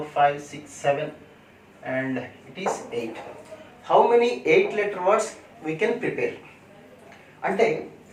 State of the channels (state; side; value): identical; both; correlation 1.00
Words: 5 6 7 and it is 8. How many 8-letter words we can prepare? అంటే